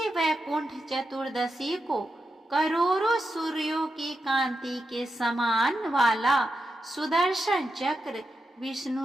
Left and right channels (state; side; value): normal; both; correlation 0.88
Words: वैकुंठ चतुर्दशी को करोड़ों सूर्यों की कांति के समान वाला सुदर्शन चक्र